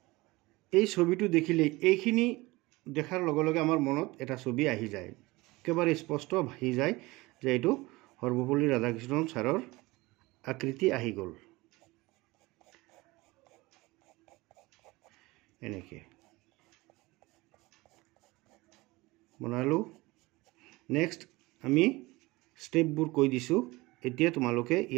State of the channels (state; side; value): quieter; left; 21.6 dB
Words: এই ছবিটো দেখিলে এইখিনি দেখাৰ লগে লগে আমাৰ মনত এটা ছবি আহি যায়, একেবাৰে স্পষ্ট আহি যায় যে এইটো সৰ্বপল্লী ৰাধাকৃষ্ণন ছাৰৰ আকৃতি আহি গ'ল। এনেকৈ বনালোঁ। নেক্সট আমি ষ্টেপবোৰ কৈ দিছোঁ। এতিয়া তোমালোকে